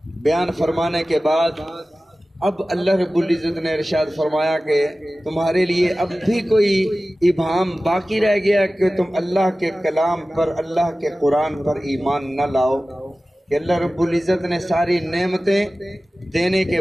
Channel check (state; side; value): normal; both; correlation 0.96